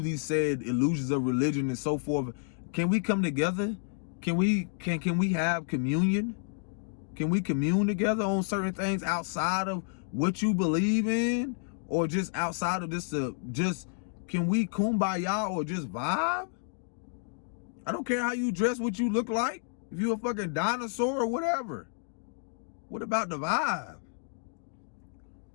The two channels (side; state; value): right; silent; digital silence